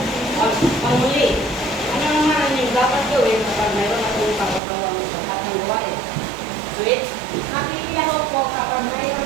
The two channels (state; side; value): drops out; left; at 4.6 s